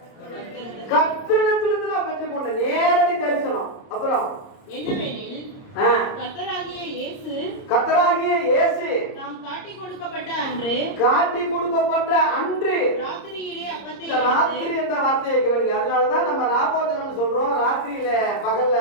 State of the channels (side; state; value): right; late; 30 ms